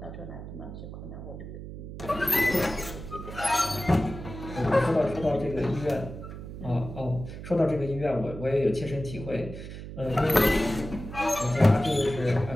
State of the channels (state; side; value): noise; right; hum, 10 dB below the sound